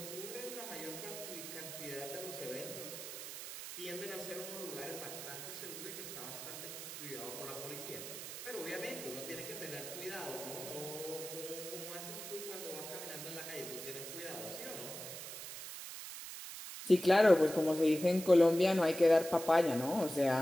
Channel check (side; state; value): right; noise; hiss, 9 dB below the sound